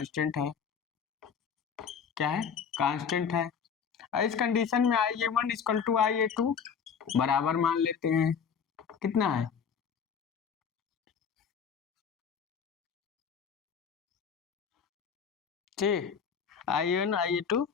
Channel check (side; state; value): right; quieter; 6.8 dB